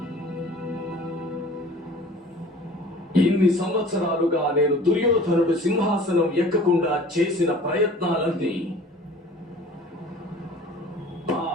ఇన్ని సంవత్సరాలుగా నేను దుర్యోధనుడు సింహాసనం ఎక్కకుండా చేసిన ప్రయత్నాలన్నీ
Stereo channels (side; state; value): both; normal; correlation 0.46